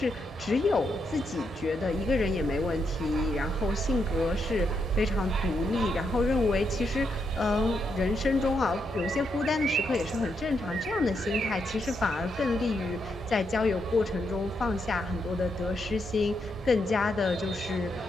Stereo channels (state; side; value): normal; both; correlation 0.80